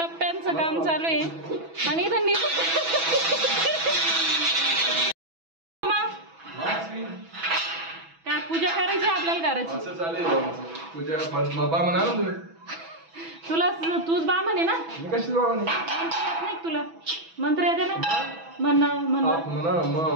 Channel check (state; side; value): late; left; 6.1 ms